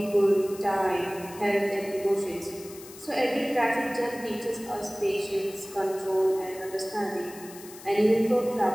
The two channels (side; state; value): left; noise; hiss, 17 dB below the sound